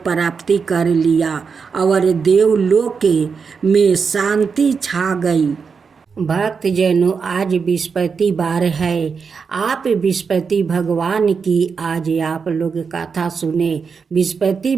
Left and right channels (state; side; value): quieter; left; 5.6 dB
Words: प्राप्ति कर लिया और देवलोक में शांति छा गई। भक्तजनों, आज बृहस्पतिवार है। आप बृहस्पति भगवान की आज आप लोग कथा सुने।